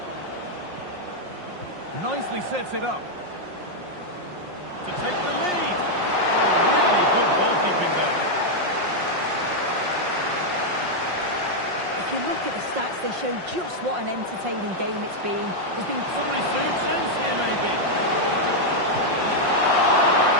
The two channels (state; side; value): late; left; 5.6 ms